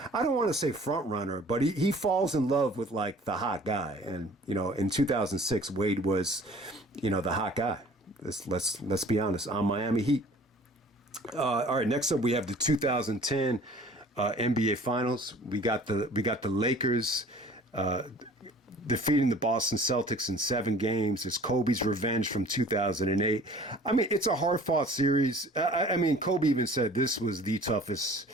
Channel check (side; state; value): both; normal; correlation 0.49